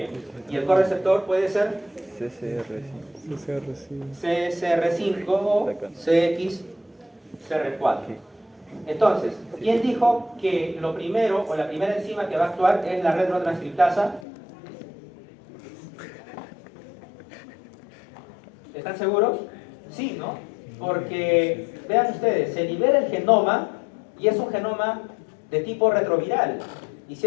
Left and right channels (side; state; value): right; drops out; at 14.2 s